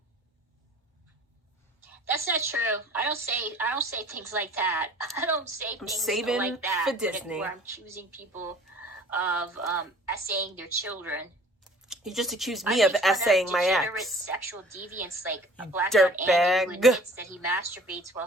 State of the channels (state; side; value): normal; both; correlation 0.49